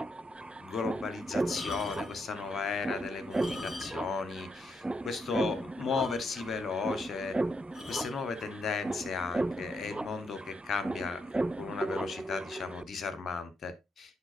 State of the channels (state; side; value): normal; both; correlation 0.79